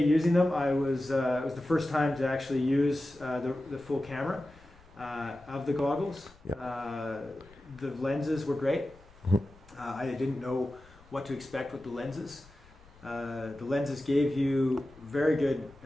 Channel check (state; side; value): noise; left; rumble, 25 dB below the sound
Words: using them, it was the first time to actually use the full camera of the goggles. Yeah. The lenses were great. I didn't know what to expect with the lenses. The lenses gave you very good